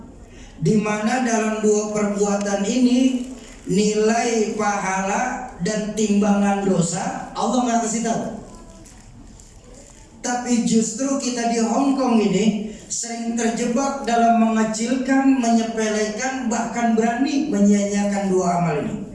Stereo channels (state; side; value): identical; both; correlation 1.00